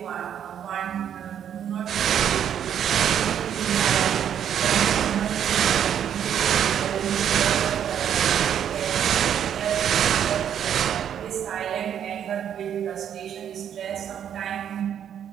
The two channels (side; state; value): left; quieter; 9.2 dB